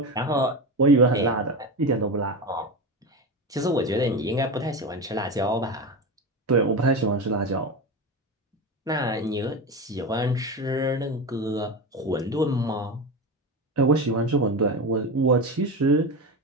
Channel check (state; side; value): normal; both; correlation 0.21